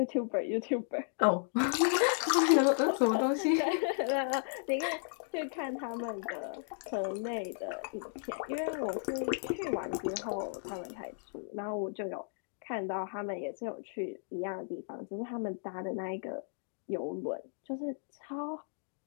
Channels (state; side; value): silent; right; digital silence